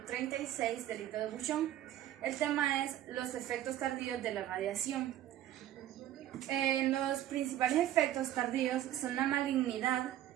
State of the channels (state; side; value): quieter; left; 12.5 dB